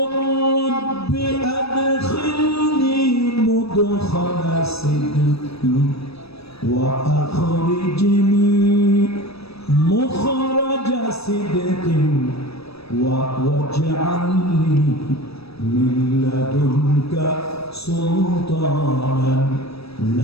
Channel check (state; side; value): late; right; 0.78 ms